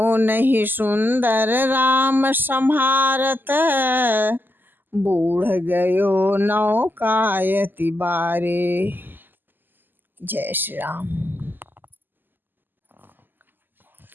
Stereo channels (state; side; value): late; left; 0.091 ms